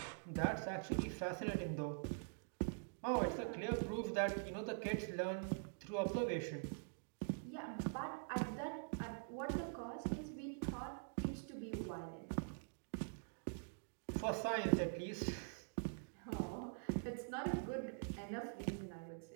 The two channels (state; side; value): silent; left; digital silence